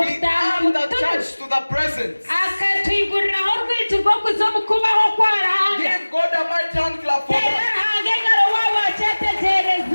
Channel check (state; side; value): inverted; both; correlation -1.00